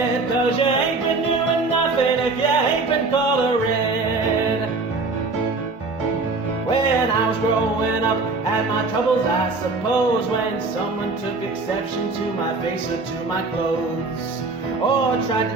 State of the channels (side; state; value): left; quieter; 3.7 dB